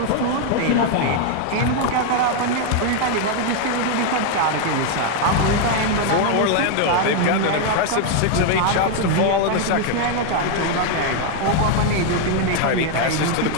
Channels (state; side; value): different; both; correlation 0.00